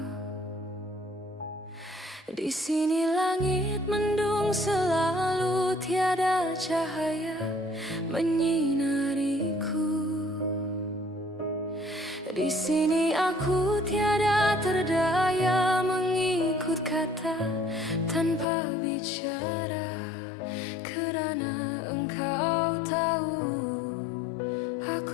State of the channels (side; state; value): right; drops out; at 18.4 s